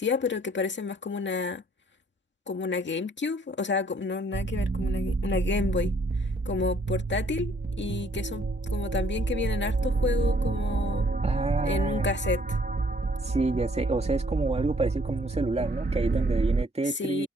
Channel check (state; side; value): normal; both; correlation 0.63